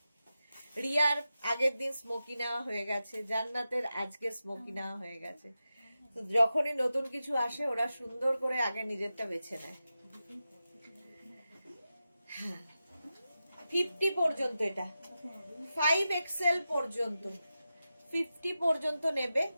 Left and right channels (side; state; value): both; inverted; correlation -0.92